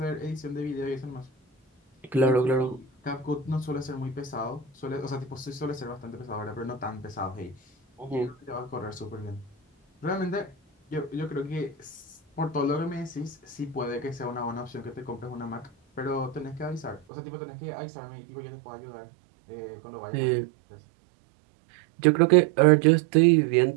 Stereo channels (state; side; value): drops out; left; at 17.0 s